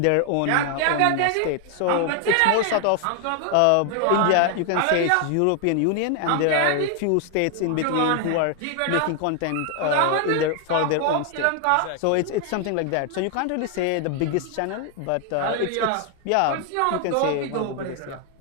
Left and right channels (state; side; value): different; both; correlation 0.00